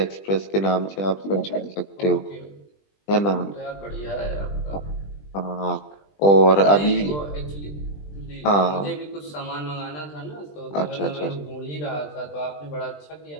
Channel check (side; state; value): right; late; 20 ms